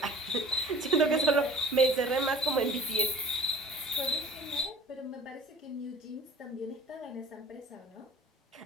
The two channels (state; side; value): normal; both; correlation 0.47